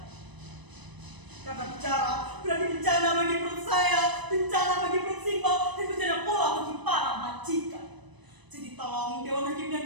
Karena bicara berarti bencana bagi perut saya, bencana bagi perut Simba, dan bencana pula bagi para majikan. Jadi tolong Dewan Hakim yang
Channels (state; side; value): late; left; 1.0 ms